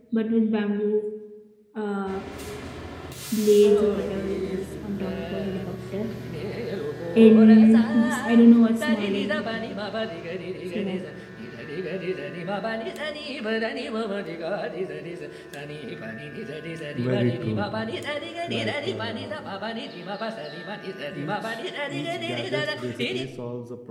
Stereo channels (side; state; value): both; identical; correlation 1.00